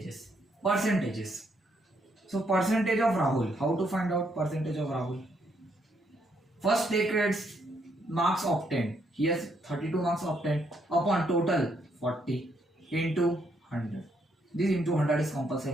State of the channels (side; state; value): both; normal; correlation 0.74